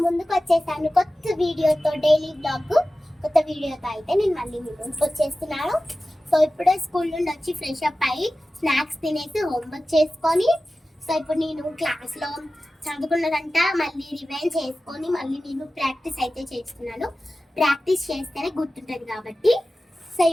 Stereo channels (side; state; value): both; normal; correlation 0.95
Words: ముందుకు వచ్చేసాను కొత్త వీడియోతో. డైలీ బ్లాగ్ కొత్త వీడియోతో అయితే నేను మళ్ళీ మీ ముందుకు వచ్చేస్తున్నాను. సో ఇప్పుడే స్కూల్ నుండి వచ్చి ఫ్రెష్ అప్ అయ్యి స్నాక్స్ తినేసి హోంవర్క్ చేసుకొని, సో ఇప్పుడు నేను క్లాస్లో చదువుకున్నదంట మళ్ళీ రివైండ్ చేసుకొని మళ్ళీ నేను ప్రాక్టీస్ అయితే చేస్తున్నాను. ప్రాక్టీస్ చేస్తేనే గుర్తుంటుంది కాబట్టి. సో